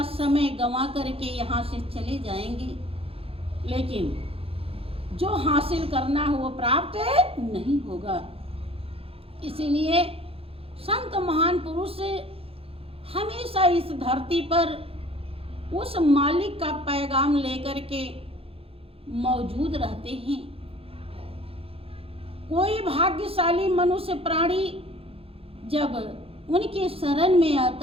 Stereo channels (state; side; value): late; left; 0.27 ms